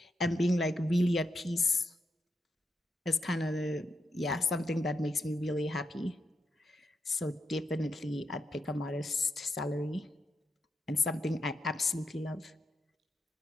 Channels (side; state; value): both; normal; correlation 0.84